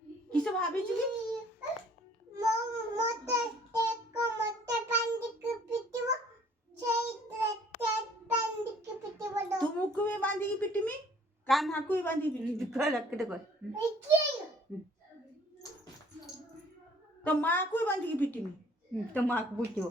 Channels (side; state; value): both; normal; correlation 0.57